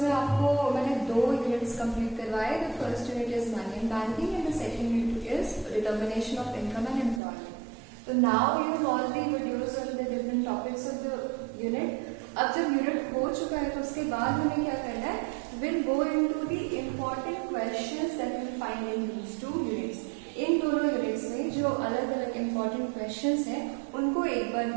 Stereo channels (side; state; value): left; drops out; at 7.2 s